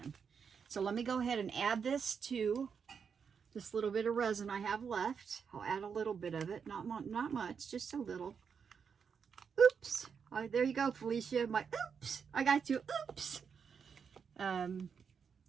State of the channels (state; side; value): quieter; left; 6.5 dB